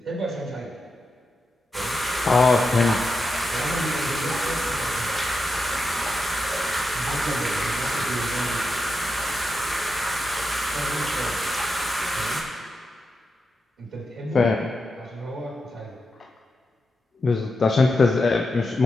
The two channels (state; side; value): normal; both; correlation 0.88